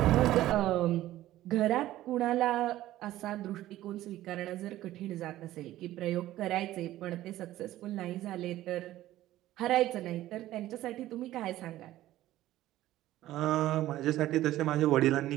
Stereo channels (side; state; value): left; quieter; 14.7 dB